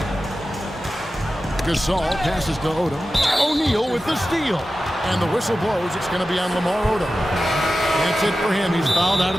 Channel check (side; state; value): both; normal; correlation 0.93